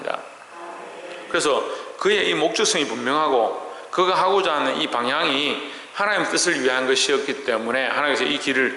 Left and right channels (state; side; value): identical; both; correlation 1.00